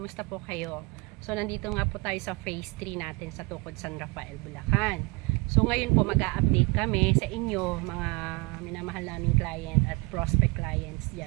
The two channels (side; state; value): left; quieter; 27.7 dB